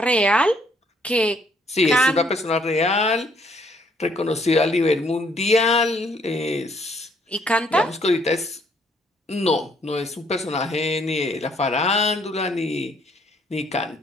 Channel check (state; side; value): normal; both; correlation 0.67